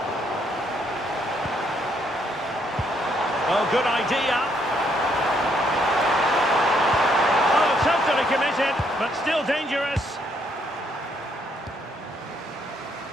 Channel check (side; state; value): both; normal; correlation 0.71